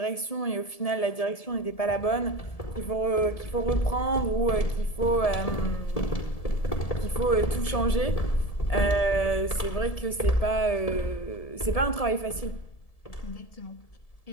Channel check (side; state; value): right; late; 1.7 ms